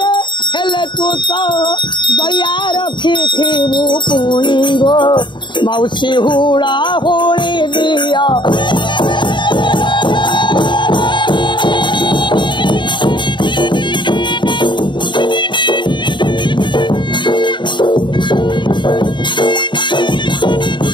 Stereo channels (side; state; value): right; late; 0.23 ms